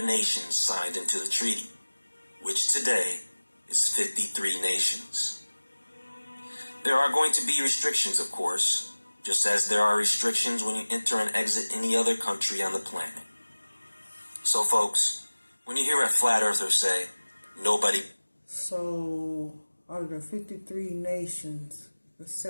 nations signed into the treaty, which today is 53 nations. There are going to be restrictions, of course, just as there are restrictions when you enter and exit any other country on the planet. So, folks, when you hear a flat earther say, nobody... So, out of the 53 nations that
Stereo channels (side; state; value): both; inverted; correlation -1.00